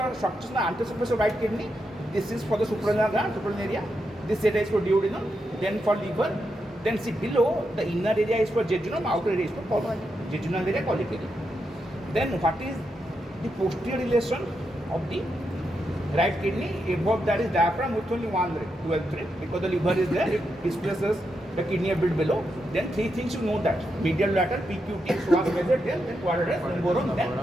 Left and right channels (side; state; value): both; normal; correlation 0.84